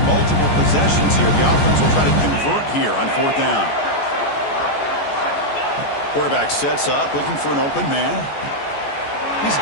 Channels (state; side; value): late; right; 14 ms